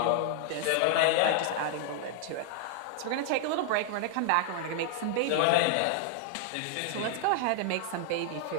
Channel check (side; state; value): both; different; correlation 0.00